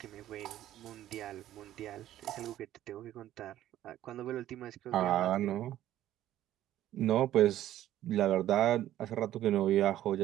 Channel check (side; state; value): left; quieter; 13.0 dB